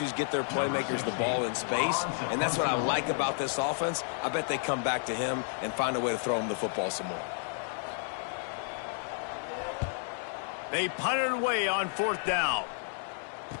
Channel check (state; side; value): silent; right; 57 dB below the other